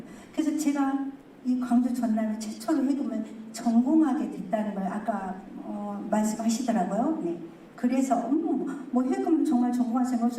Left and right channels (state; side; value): identical; both; correlation 1.00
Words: 그래서 제가 이 광주 전남에 최초로 해금을 전공하게 됐다는 걸 아까 말씀하시더라고요. 네. 그래서 뭐 해금 정말 전공할 생각